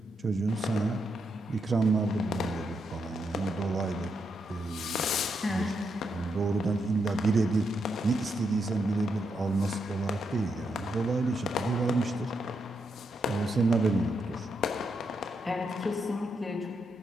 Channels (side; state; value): both; normal; correlation 0.82